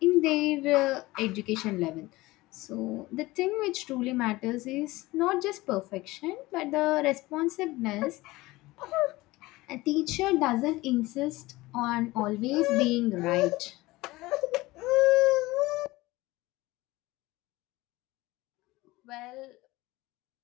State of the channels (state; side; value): quieter; right; 19.9 dB